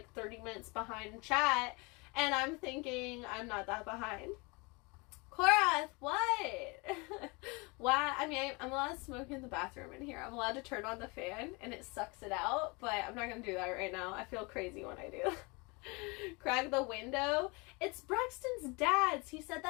30 minutes behind in chat, and I'm thinking I'm not that behind. Korath, what? Why? I mean, I'm allowed to smoke in the bathroom in here. I'm allowed to turn on the fan and it sucks it out, but I'm not gonna do that right now. I feel crazy when I do. Crack the window. It's Braxton's dad's. He said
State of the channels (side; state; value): right; quieter; 28.2 dB